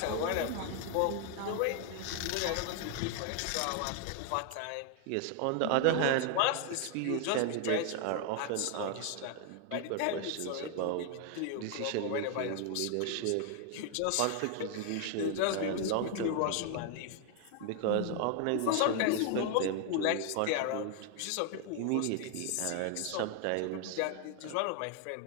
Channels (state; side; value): different; both; correlation 0.00